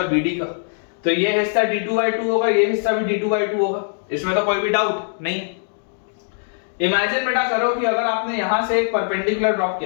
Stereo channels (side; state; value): right; silent; digital silence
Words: BD का, तो ये हिस्सा d2/2 होगा, ये हिस्सा भी d2/2 होगा, इसमें तो कोई भी डाउट नहीं। इमेजिन बेटा करो कि अगर आपने यहां से एक परपेंडिकुलर ड्रॉप